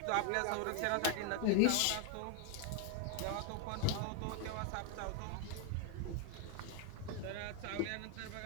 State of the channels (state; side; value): different; both; correlation 0.01